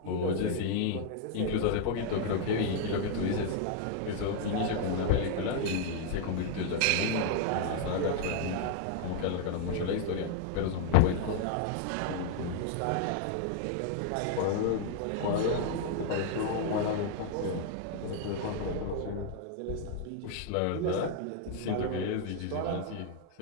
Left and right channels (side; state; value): both; different; correlation 0.00